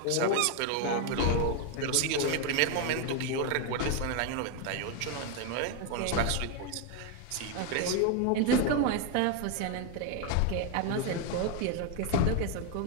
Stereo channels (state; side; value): different; both; correlation 0.01